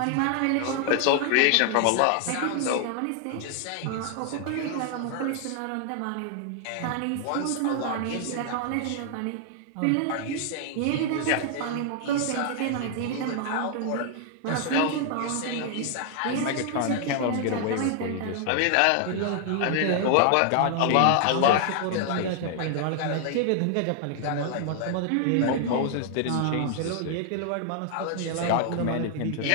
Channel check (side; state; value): both; different; correlation 0.00